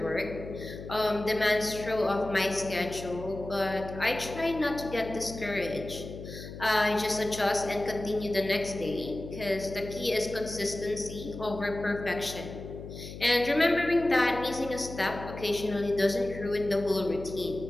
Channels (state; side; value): noise; left; hum, 11 dB below the sound